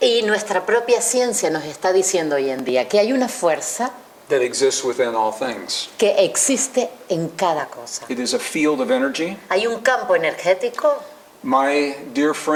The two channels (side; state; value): both; identical; correlation 1.00